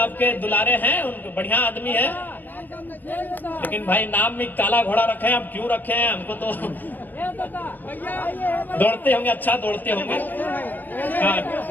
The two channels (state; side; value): late; right; 0.089 ms